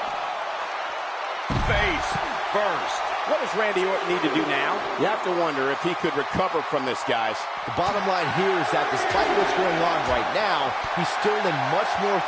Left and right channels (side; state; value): both; identical; correlation 1.00